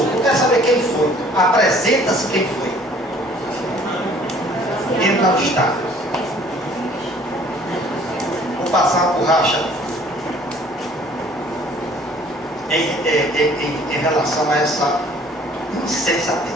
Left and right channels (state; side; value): normal; both; correlation 0.55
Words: Eu quero saber quem foi. Apresenta-se quem foi. Ele não está. passar a borracha em relação a essa